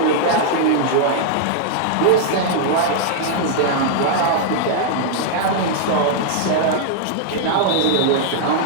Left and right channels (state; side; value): different; both; correlation -0.01